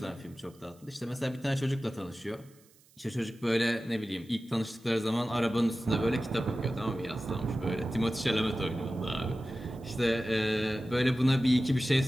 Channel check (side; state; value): right; noise; hiss, 29 dB below the sound